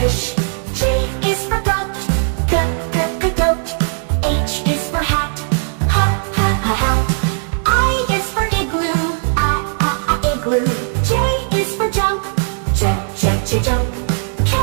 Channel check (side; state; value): left; silent; digital silence